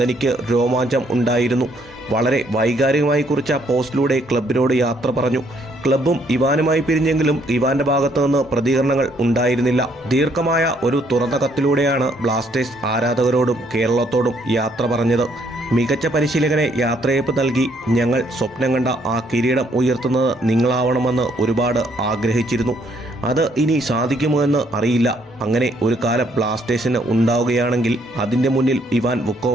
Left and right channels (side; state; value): both; normal; correlation 0.68